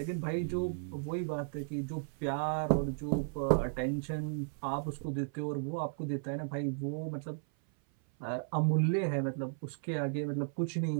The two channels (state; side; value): silent; left; 55 dB below the other